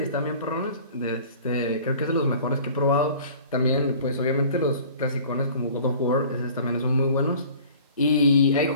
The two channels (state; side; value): inverted; both; correlation -0.47